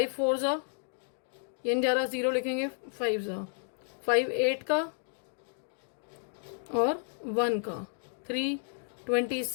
4 जा, ये नहीं जा रहा, 0 लिखेंगे, 5 जा, 5 8 का और 1 का, 3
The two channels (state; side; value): silent; right; digital silence